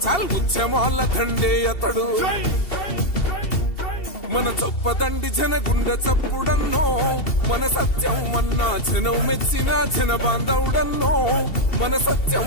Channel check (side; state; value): right; late; 2.7 ms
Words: చాల్ ఉద్యమాల దండే అతడు మన చొప్పదండి జన గుండె చప్పుడన్నో మన సత్యం అన్నా జనం మెచ్చిన జన బాంధవుడన్నో మన